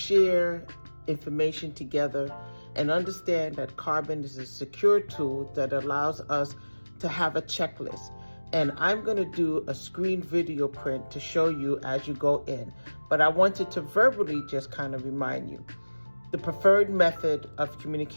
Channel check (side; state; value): both; inverted; correlation -1.00